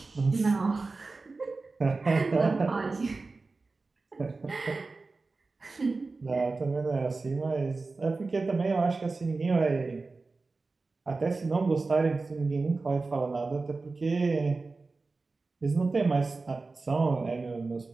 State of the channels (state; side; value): quieter; left; 3.8 dB